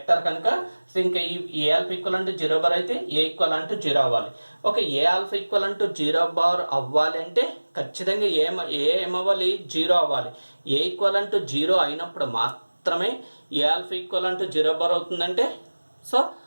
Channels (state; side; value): inverted; both; correlation -1.00